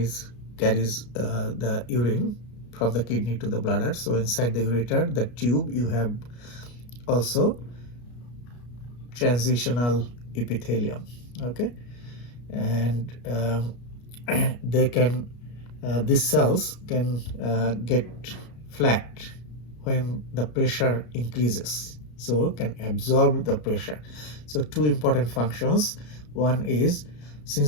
the urine from the kidney to the bladder. So inside the ureter, the tube, you have also transitional epithelium. Okay, and they can these cells can get flat when the pressure increases, so can absorb the pressure. So two important functions. One is,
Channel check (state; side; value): late; right; 33 ms